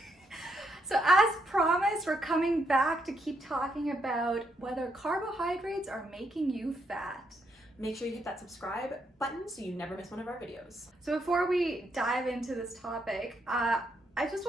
So as promised, we're coming back to keep talking about whether carbohydrates are making you fat. Make sure you hit that subscribe button so you never miss one of our videos. So before we dive into this topic, I just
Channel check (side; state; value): both; normal; correlation 0.77